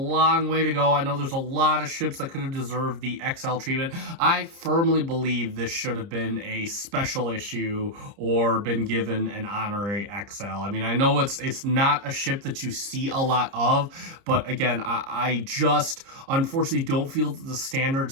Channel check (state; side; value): late; left; 30 ms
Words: way to go. I know there's a lot of ships that could have deserved the XL treatment. I firmly believe this should have been a special issue or been given an honorary XL. I mean, I know it's not a ship that you see a lot of, but again, I just unfortunately don't feel that the standard